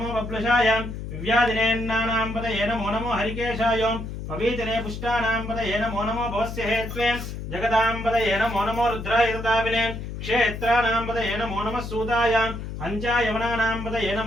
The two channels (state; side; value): noise; left; hum, 7 dB below the sound